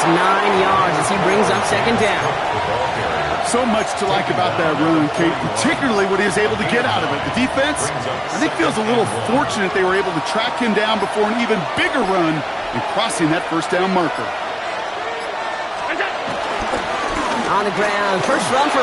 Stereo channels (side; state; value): both; identical; correlation 1.00